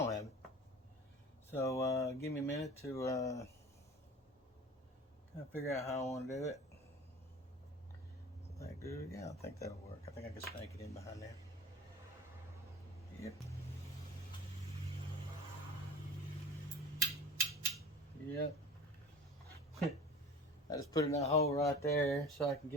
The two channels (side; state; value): both; normal; correlation 0.38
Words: have it. So give me a minute to kind of figure out how I want to do it. Is that good? Yeah, I think that'll work. I think I can snake it in behind there. Yep. Yep. I just put it in that hole right there so I can